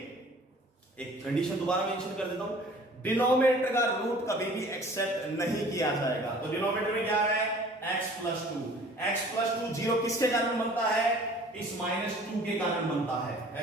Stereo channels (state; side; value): normal; both; correlation 0.49